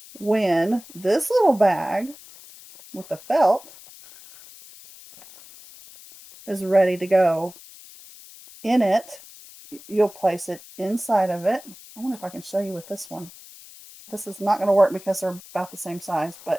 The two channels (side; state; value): left; noise; hiss, 20 dB below the sound